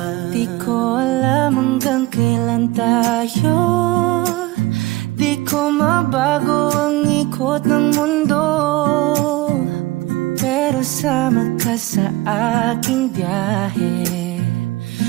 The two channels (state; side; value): quieter; left; 19.4 dB